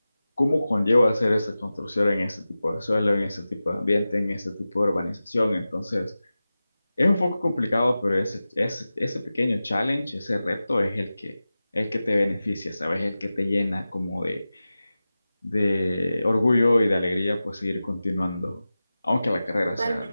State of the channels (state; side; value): inverted; both; correlation -0.95